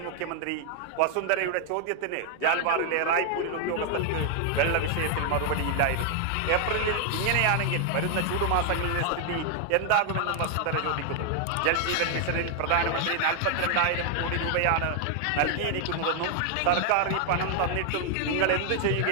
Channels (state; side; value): different; both; correlation 0.00